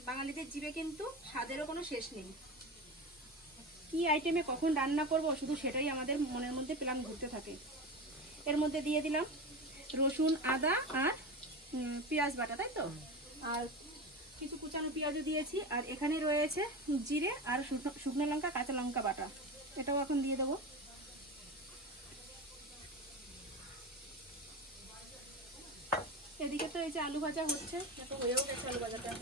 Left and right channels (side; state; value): both; normal; correlation 0.25